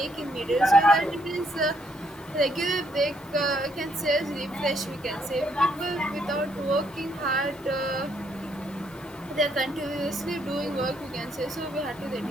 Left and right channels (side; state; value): both; normal; correlation 0.72